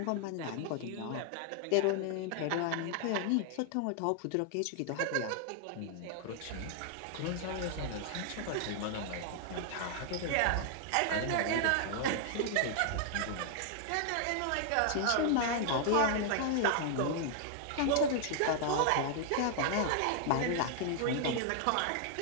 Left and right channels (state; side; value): different; both; correlation 0.00